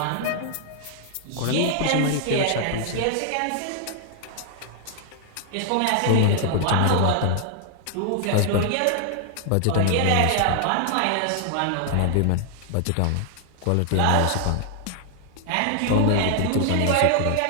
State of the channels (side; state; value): both; different; correlation 0.00